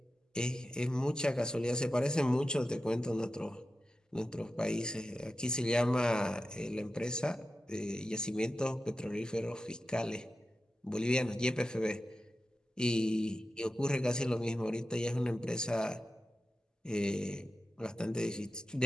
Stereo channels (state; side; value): normal; both; correlation 0.92